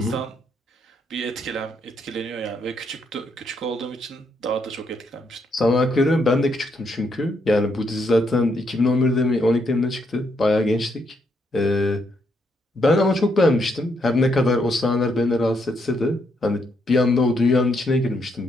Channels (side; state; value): both; normal; correlation 0.76